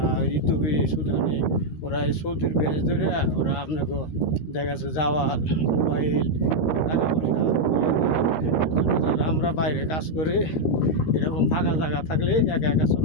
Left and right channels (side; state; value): right; late; 13 ms